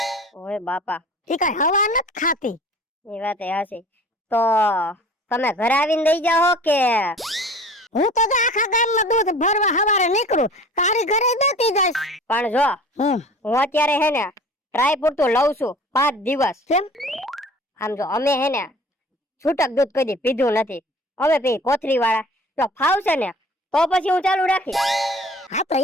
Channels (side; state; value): both; normal; correlation 0.45